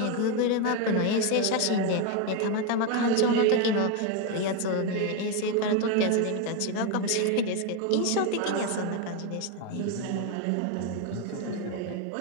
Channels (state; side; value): different; both; correlation 0.02